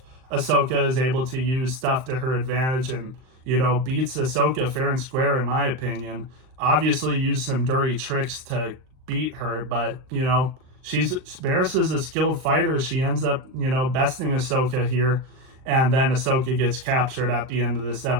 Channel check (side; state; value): left; late; 38 ms